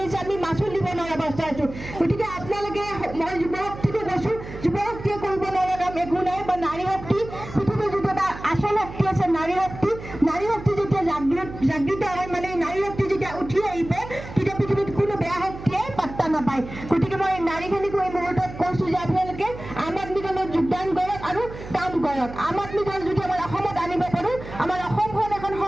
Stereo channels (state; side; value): noise; right; hum, 12 dB below the sound